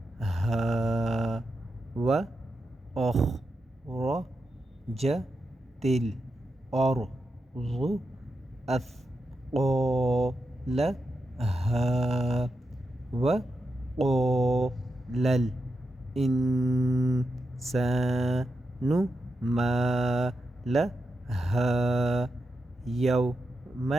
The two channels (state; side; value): normal; both; correlation 0.87